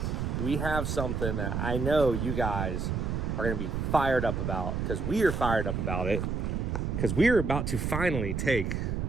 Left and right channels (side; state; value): right; noise; rumble, 1 dB below the sound